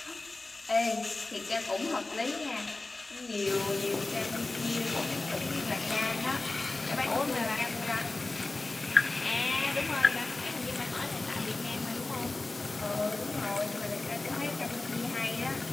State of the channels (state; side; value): quieter; right; 3.2 dB